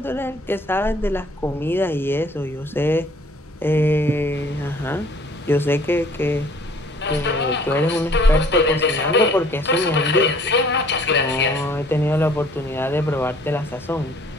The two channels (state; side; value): normal; both; correlation 0.56